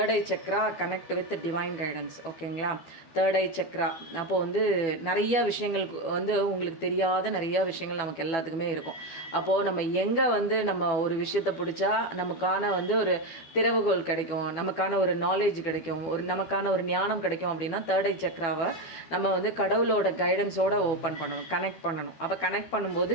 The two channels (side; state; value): right; late; 12 ms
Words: I Chakra connect with divine guidance. ஓகேங்களா? தேர்ட் ஐ சக்ரா அப்போது வந்து நிறைய விஷயங்கள் வந்து உங்களுக்கு தெரியாத நிறையா விஷயங்கள் நமக்கு எல்லாத்துக்குமே இருக்கும். அப்போது நம்ம எங்கே வந்து நம்ம ஒரு விஷயத்தை பிடிச்சா நமக்கான வந்து ஒரு திறவுகோல் கிடைக்கும், நமக்கான ஒரு நாலேஜ் கிடைக்கும், நமக்கான ஒரு ஞானம் கிடைக்கும் அப்படின்னா தேர்ட் ஐ சக்ராவை நம்ம வந்து கடவுளோட கைடன்ஸோடு ஓப்பன் பண்ணணும், கனெக்ட் பண்ணணும். அப்போ கனெக்ட் பண்ணும்போது